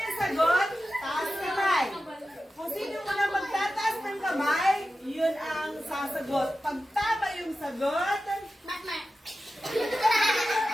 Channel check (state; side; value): normal; both; correlation 0.93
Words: yung sagot, taas kamay. Kung sino muna magtataas ng kamay, yun ang sasagot. Pag tama yung sagot,